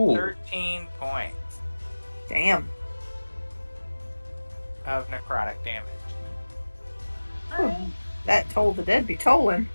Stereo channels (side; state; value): both; inverted; correlation -1.00